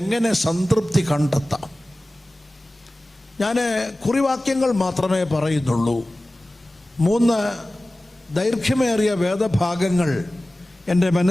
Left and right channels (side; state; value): both; normal; correlation 0.97